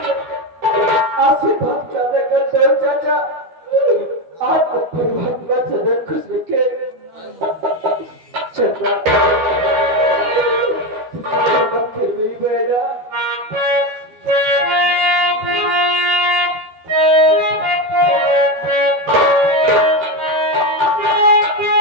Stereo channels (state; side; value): late; left; 12 ms